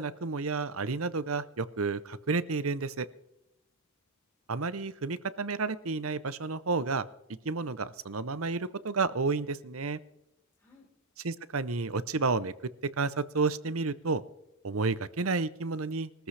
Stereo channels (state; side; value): quieter; left; 3.6 dB